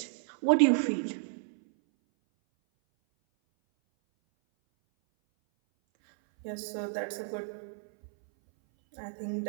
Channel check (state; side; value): silent; left; 57 dB below the other